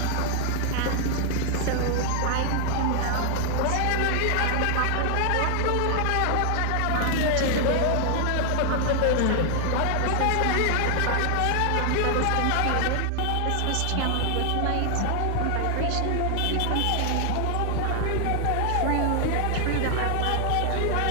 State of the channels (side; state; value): both; different; correlation 0.00